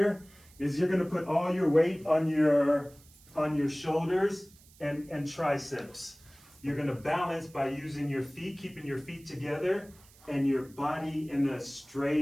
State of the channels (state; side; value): noise; right; hiss, 26 dB below the sound